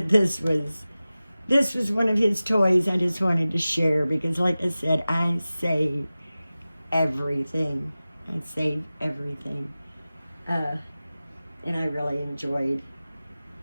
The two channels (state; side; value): inverted; both; correlation -0.96